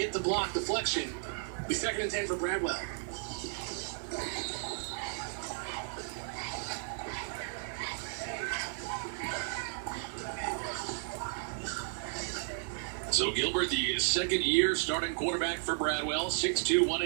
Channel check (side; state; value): left; silent; digital silence